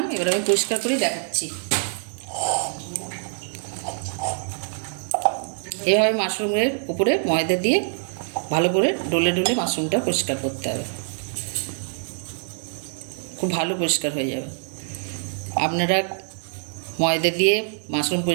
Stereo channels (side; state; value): left; silent; digital silence